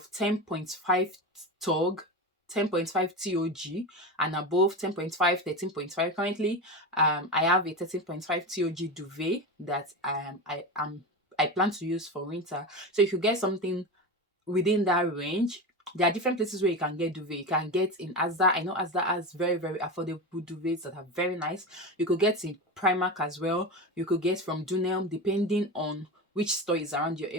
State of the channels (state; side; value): normal; both; correlation 0.22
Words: 10.5 tog, 10.5 TOG, and above 10.5, 13.5. Currently, I have a 13.5 TOG duvet that I plan to use for winter. So if you get something within that range, there are different places where you can get duvet. You can get in Asda. I know Asda has very, very affordable duvets that are very nice. You could get in Primark as well. You could get from Dunelm, depending on which store is around your